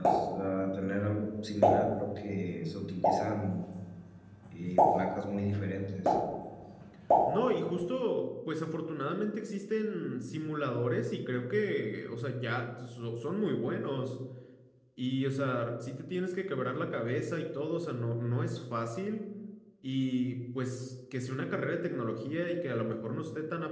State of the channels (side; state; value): both; identical; correlation 1.00